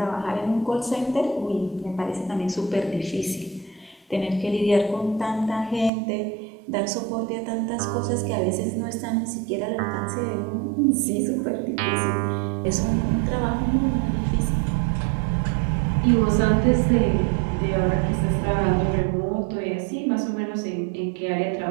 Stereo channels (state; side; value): drops out; left; at 5.9 s